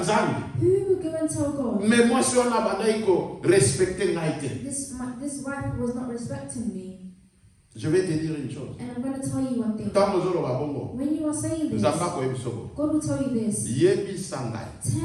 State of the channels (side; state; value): both; identical; correlation 1.00